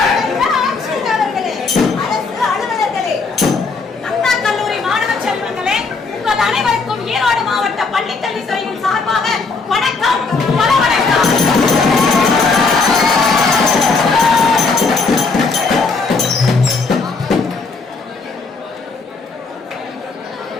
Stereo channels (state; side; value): quieter; right; 4.3 dB